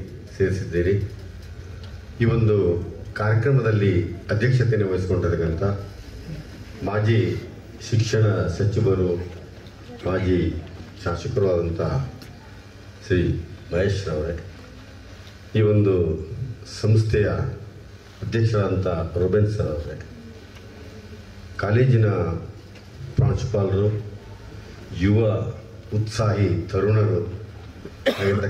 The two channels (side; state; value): both; identical; correlation 1.00